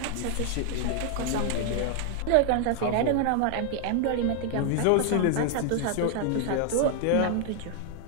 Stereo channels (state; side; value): different; both; correlation 0.00